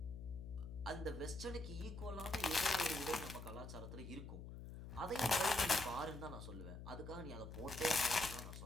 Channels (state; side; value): noise; left; hum, 10 dB below the sound